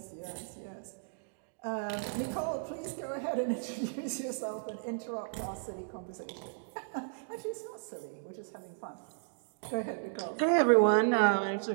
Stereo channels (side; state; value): left; silent; digital silence